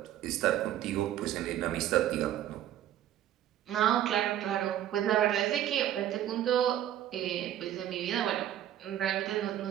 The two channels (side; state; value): left; quieter; 11.8 dB